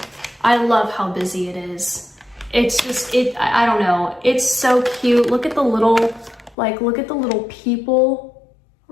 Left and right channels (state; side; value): drops out; right; at 6.6 s